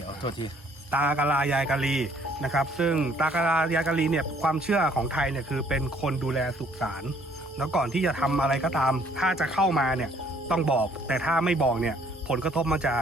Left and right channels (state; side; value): normal; both; correlation 0.61